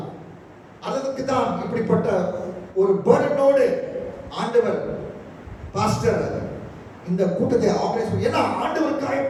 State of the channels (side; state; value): both; identical; correlation 1.00